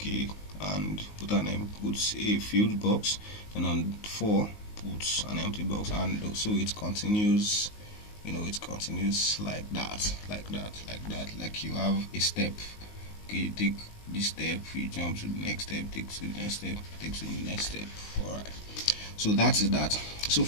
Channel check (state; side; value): late; right; 19 ms